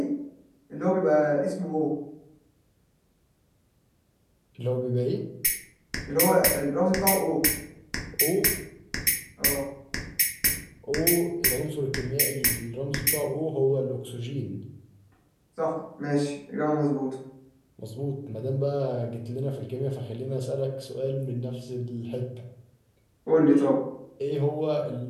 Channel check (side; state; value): both; identical; correlation 1.00